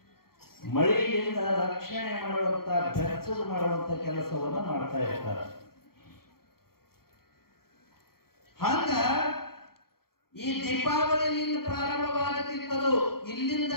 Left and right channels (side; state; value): right; late; 0.94 ms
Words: ಮಳೆಯಿಂದ ರಕ್ಷಣೆ ಮಾಡುವಂತ ಬೆಚ್ಚದು ಮಾಡುವಂತ ಕೆಲಸವನ್ನ ಮಾಡ್ತಾ ಇರ್ತಾರೆ. ಹಂಗ ಈ ದೀಪಾವಳಿಯಿಂದ ಪ್ರಾರಂಭವಾಗುತ್ತಿತ್ತದು. ಇಲ್ಲಿಂದ